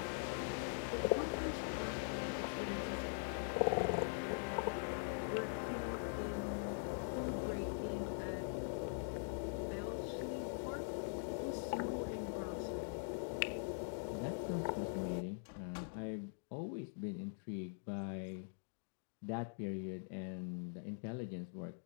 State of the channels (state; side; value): silent; right; digital silence